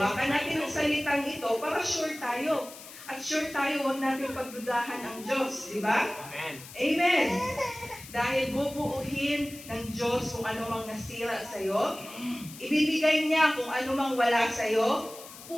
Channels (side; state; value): left; noise; hiss, 16 dB below the sound